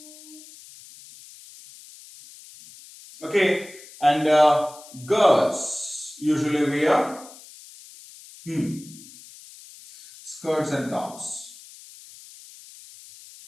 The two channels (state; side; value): noise; left; hiss, 20 dB below the sound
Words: Okay, and girls usually wear skirts and tops.